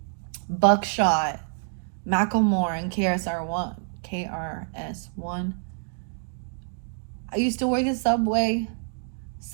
Buckshot, Macklemore and KRS-One. I used to work at Subway.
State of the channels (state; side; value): silent; left; 60 dB below the other